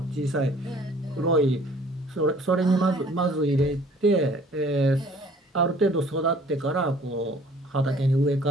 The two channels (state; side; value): normal; both; correlation 0.54